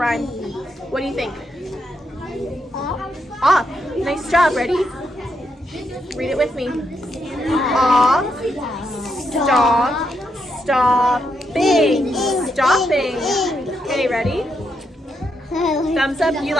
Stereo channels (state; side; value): normal; both; correlation 0.80